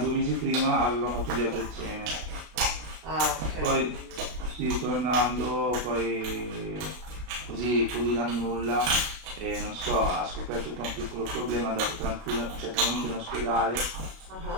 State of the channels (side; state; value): left; late; 33 ms